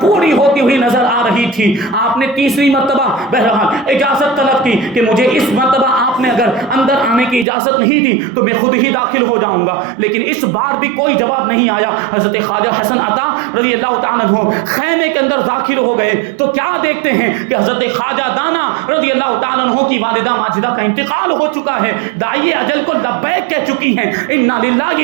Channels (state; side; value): drops out; left; at 7.5 s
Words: پوری ہوتی ہوئی نظر آ رہی تھی۔ آپ نے تیسری مرتبہ بہرحال اجازت طلب کی کہ مجھے اس مرتبہ آپ نے اگر اندر آنے کی اجازت نہیں دی تو میں خود ہی داخل ہو جاؤں گا، لیکن اس بار بھی کوئی جواب نہیں آیا۔ حضرت خواجہ حسن عطا رضی اللہ تعالیٰ عنہ خیمے کے اندر داخل ہو گئے تو کیا دیکھتے ہیں کہ حضرت خواجہ دانا رضی اللہ تعالیٰ عنہ کی والدہ ماجدہ کا انتقال ہو چکا ہے، داعی اجل کو لبیک کہہ چکی ہیں، انا للہ